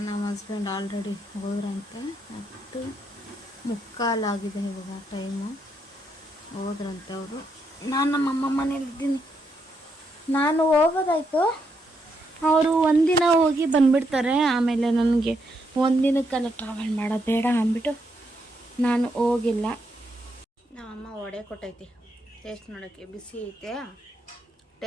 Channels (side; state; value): both; normal; correlation 0.78